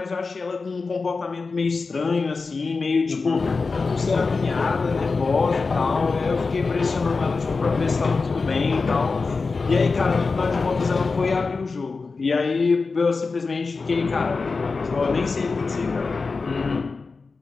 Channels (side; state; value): right; quieter; 4.3 dB